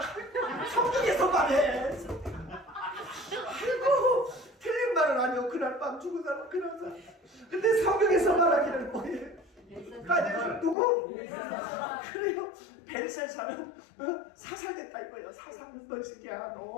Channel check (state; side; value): drops out; right; at 10.8 s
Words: 성경에서 말해. 아이고 틀린 말은 아니요. 그날 밤 죽은 사람 그런 사람. 근데 성경에서 말하기를 뭐예요? 다니엘 누구? 그래요. 벨사살은 사살됐다 이거예요. 사살은 너 새끼야